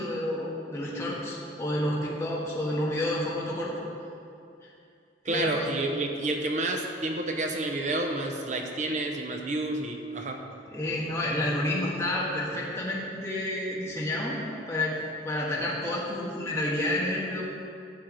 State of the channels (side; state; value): both; normal; correlation 0.43